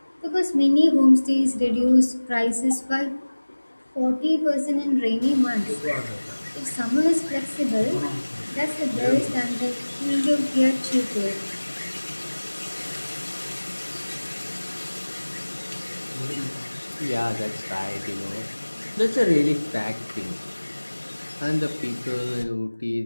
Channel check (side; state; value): both; inverted; correlation -1.00